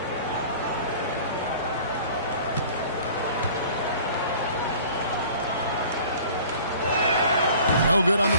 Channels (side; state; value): both; inverted; correlation -0.47